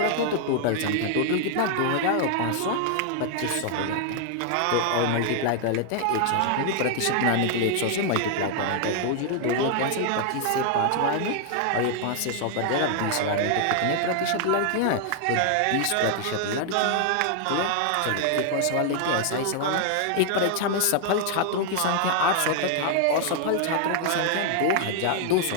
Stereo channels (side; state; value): both; different; correlation 0.00